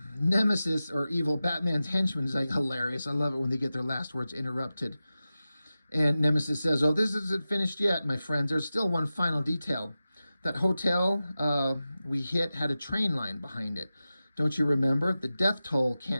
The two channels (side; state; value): both; inverted; correlation -0.94